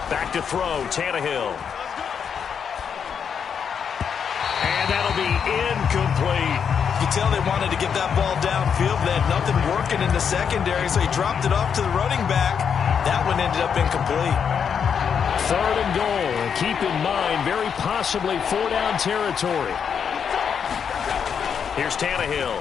Back to throw, Tannehill. And that'll be incomplete. You can tell they wanted to get that ball downfield. They had nothing working in the secondary, so he dropped it off to the running back. That one ended up incomplete. 3rd and goal. And keep in mind, very possibly 4-down territory. Here's Tannehill.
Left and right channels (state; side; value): quieter; right; 7.2 dB